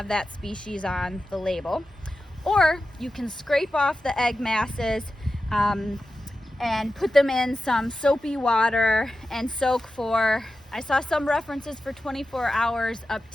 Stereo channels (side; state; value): both; normal; correlation 0.92